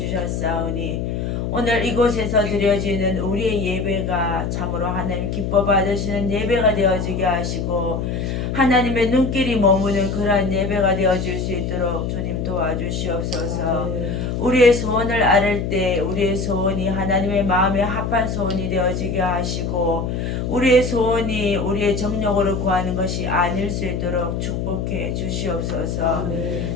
오늘 이곳에서 드려지는 우리의 예배가 참으로 하나님 기뻐 받으시는 예배가 되어지게 하시고 하나님의 눈길이 머무는 그러한 예배가 되어질 수 있도록 주님 도와주시옵소서. 우리의 소원을 아를 때 우리의 소원이 하나님의 마음에 합한 소원이 되어지게 하시고 우리의 소원이 우리의 정력으로 구하는 것이 아닐 수 있도록 축복해 주시옵소서.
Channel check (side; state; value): left; noise; hum, 2 dB below the sound